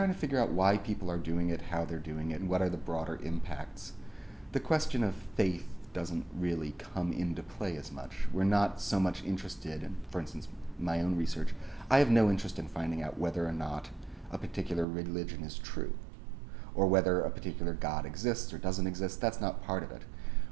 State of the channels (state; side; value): drops out; left; at 14.9 s